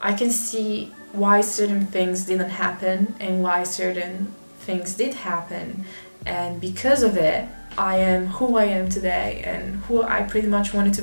can see why certain things didn't happen and why certain things did happen, and because of it I am who I am today and who I pretty much wanted to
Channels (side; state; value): both; inverted; correlation -1.00